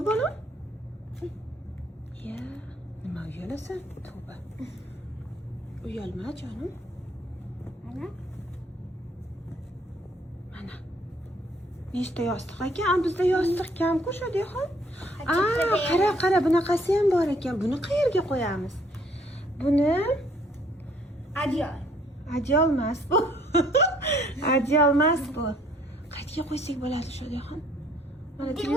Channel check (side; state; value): both; normal; correlation 0.63